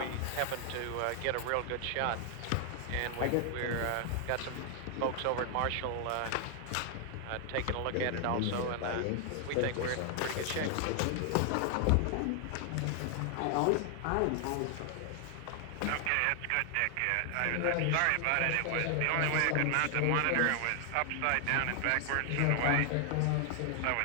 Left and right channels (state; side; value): different; both; correlation 0.00